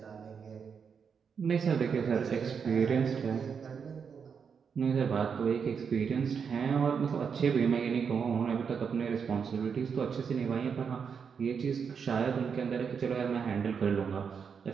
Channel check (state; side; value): quieter; left; 6.4 dB